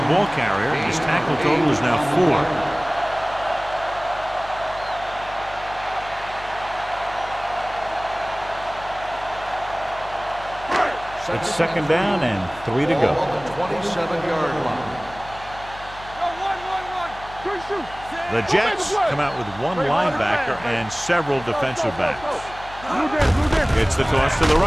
ball carrier. His tackle total is now 4. It's second down and 3 to go. Ball on the 27-yard line. One. The Jets come out with one linebacker and several defensive backs. It's the toss to the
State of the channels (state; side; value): noise; left; hum, 18 dB below the sound